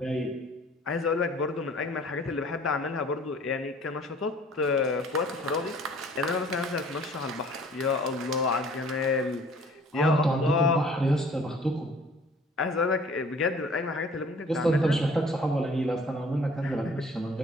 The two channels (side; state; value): both; normal; correlation 0.52